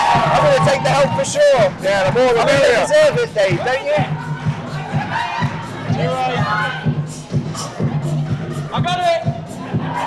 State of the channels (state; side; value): identical; both; correlation 1.00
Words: going to take the help for sure. Yeah, the more the I think they merrier. deserve it, Dave, don't you? You're right. I got it.